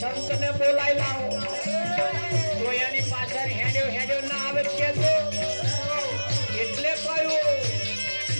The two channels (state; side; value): inverted; both; correlation -1.00